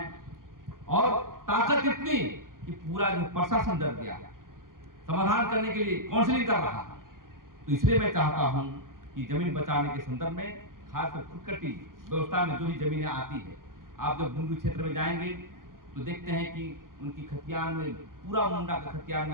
और ताकत इतनी कि पूरा जो प्रशासन डर गया, समाधान करने के लिए काउंसलिंग कर रहा है। तो इसलिए मैं चाहता हूं कि जमीन बचाने के संदर्भ में खासकर खुदकटी व्यवस्था में जो भी जमीनें आती है, आप जब बुंडू क्षेत्र में जाएंगे तो देखते हैं कि उनकी खतियान में पूरा मुंडा का खतियान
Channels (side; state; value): left; late; 0.91 ms